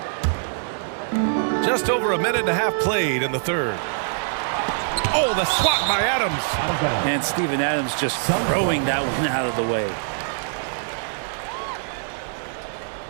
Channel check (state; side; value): silent; left; digital silence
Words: Just over a minute and a half played in the third. Oh, the swat by Adams. And Steven Adams just throwing that one out of the way.